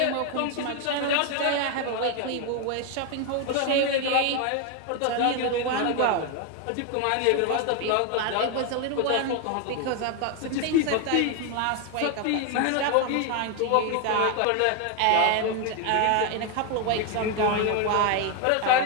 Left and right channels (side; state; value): both; different; correlation 0.01